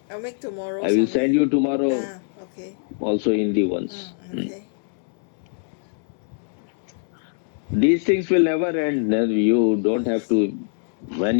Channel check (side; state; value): right; silent; digital silence